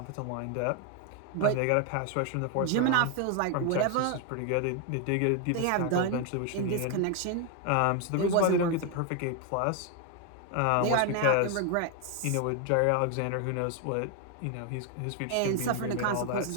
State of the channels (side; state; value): both; different; correlation 0.01